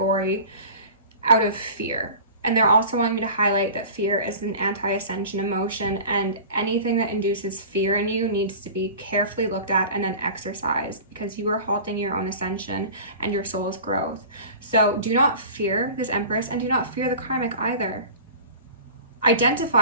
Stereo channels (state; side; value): inverted; both; correlation -0.38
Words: out of fear. And they're also wanting me to highlight that fear is an anti-ascension emotion, and anything that induces fear in you needs to be carefully looked at and then exercised, because you are halting your own ascension and your soul's growth. So do not fear this Empress, and do not fear the karmic either.